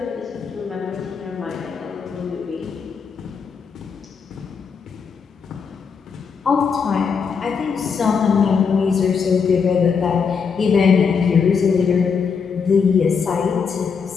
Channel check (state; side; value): quieter; right; 6.0 dB